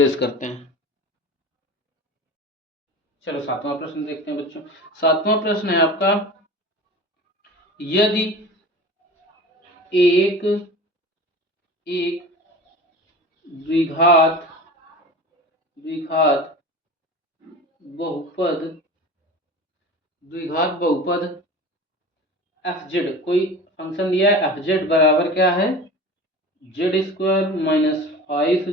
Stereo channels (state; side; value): normal; both; correlation 0.35